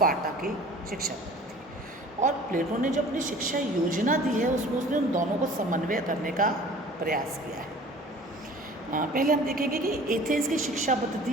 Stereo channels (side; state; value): both; normal; correlation 0.46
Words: की शिक्षा पद्धति। और प्लेटो ने जो अपनी शिक्षा योजना दी है उसमें उसने उन दोनों को समन्वय करने का प्रयास किया है। पहले हम देखेंगे कि एथेंस की शिक्षा पद्धति